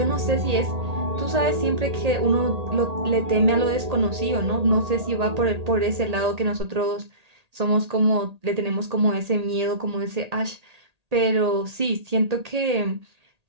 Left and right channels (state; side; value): late; left; 1.8 ms